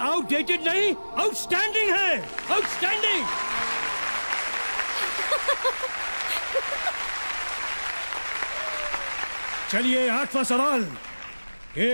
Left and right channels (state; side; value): inverted; both; correlation -1.00